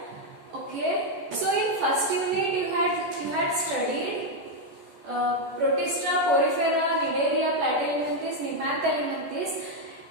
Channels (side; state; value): left; late; 14 ms